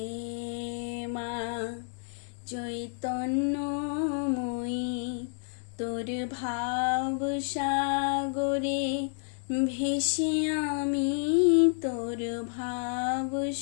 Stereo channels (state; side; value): silent; right; digital silence